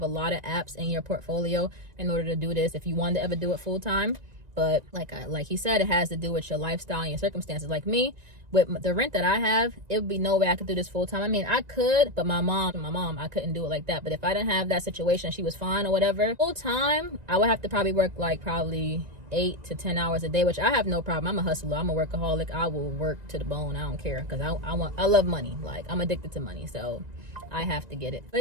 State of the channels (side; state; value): left; late; 1.9 ms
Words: a lot of apps in your portfolio in order to do this if you want to ever do it full time. But like he said, it has to do with your lifestyle and your circumstances. Like me, with the rent that I have, it would be no way I could do this full time. I mean, I could, but my mom, I couldn't do it like that. But if I didn't have that situation, she was fine or whatever, full time, I would have to probably work like probably 8 to 10 hours a day, which I have no problem. I'm a hustler. I'm a workaholic. I will work to the bone. I don't care, because I love money. Like, I'm addicted to money, so I have to get it.